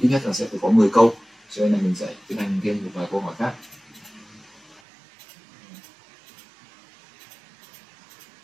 ít nhất là sẽ phải có 10 câu, cho nên là mình sẽ tiến hành thêm một vài câu hỏi khác.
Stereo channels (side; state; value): left; drops out; at 4.8 s